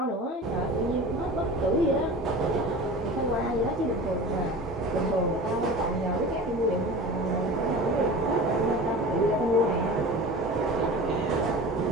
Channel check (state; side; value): normal; both; correlation 0.35